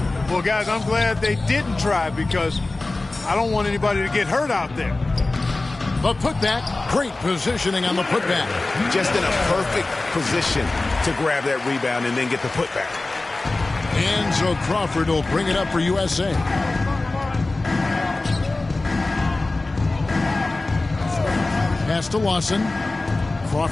Well, guys, I'm glad they didn't try because I don't want anybody to get hurt out there. The putback, great positioning on the putback. Just in a perfect position to grab that rebound and then get the putback. And so Crawford will bring it up for USA. Pass to Lawson.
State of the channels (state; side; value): quieter; right; 3.2 dB